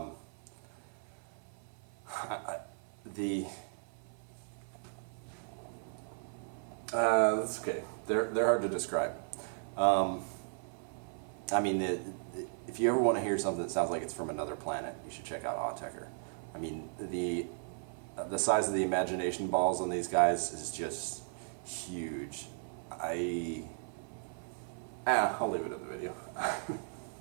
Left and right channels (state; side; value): silent; left; 54 dB below the other